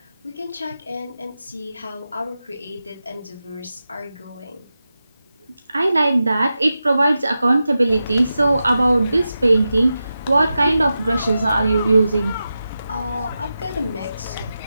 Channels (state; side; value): inverted; both; correlation -0.91